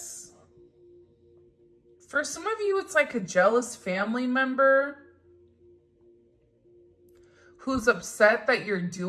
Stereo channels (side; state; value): both; identical; correlation 1.00